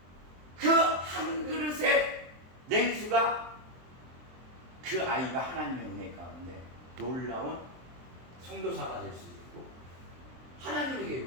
그 한 그릇의 냉수가 그 아이가 하나님의 은혜 가운데 놀라운 선교사가 될 수 있고, 하나님의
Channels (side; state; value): left; late; 23 ms